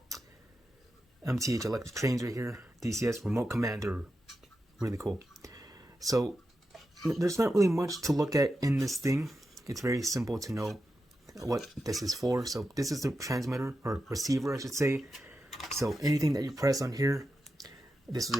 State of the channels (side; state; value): both; normal; correlation 0.89